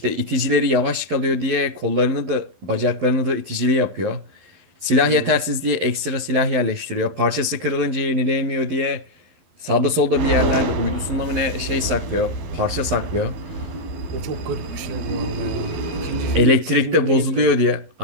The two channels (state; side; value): late; left; 12 ms